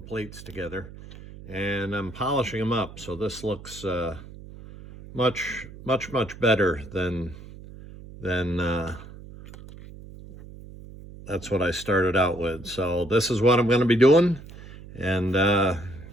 plates together. And I'm polishing them up, so this looks much better than that's what I started out with. So this is what I'm going to be doing, and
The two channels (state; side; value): noise; right; hum, 16 dB below the sound